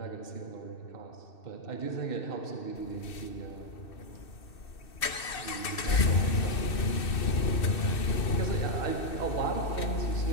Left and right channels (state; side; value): late; right; 2.6 ms